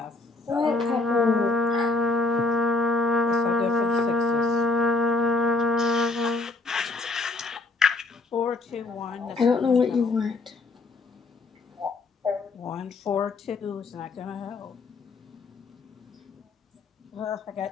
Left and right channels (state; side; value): quieter; right; 3.5 dB